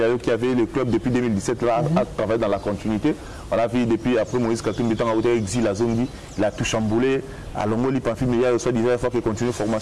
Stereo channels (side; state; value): both; identical; correlation 1.00